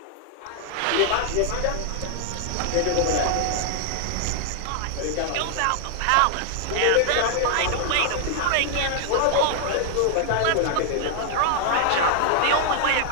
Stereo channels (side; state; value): both; different; correlation 0.00